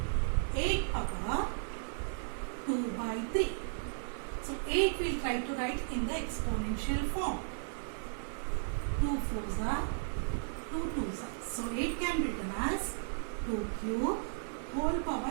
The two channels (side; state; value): left; silent; 54 dB below the other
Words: 8 power 2 by 3. So 8 we'll try to write in the exponential form. 2 4s are 2 2s are. So 8 can be written as 2 cube whole